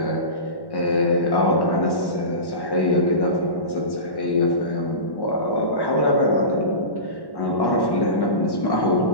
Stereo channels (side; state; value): right; late; 1.1 ms